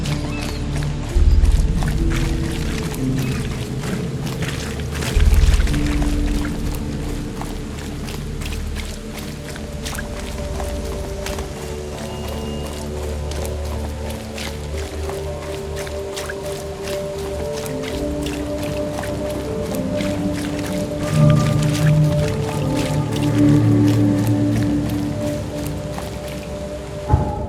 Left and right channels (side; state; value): both; identical; correlation 1.00